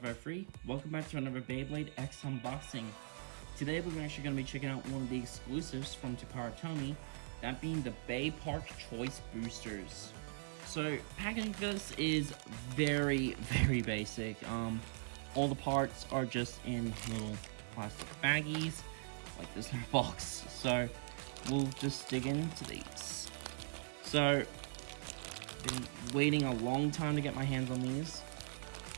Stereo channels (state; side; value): silent; left; 51 dB below the other